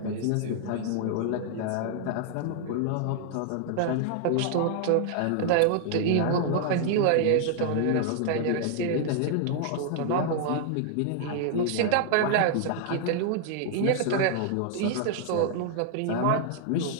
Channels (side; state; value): both; different; correlation 0.00